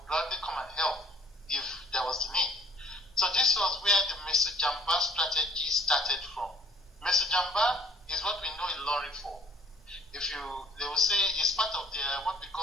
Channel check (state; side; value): normal; both; correlation 0.57